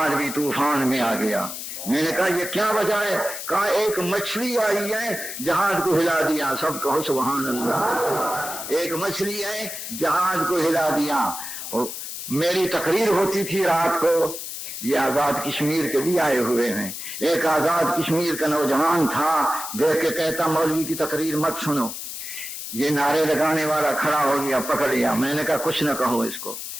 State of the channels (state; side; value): noise; left; hiss, 8 dB below the sound